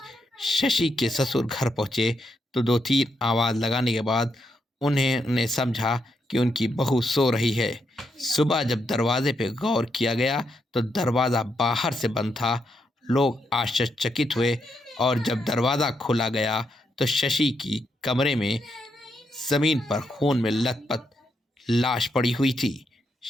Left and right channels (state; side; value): normal; both; correlation 0.80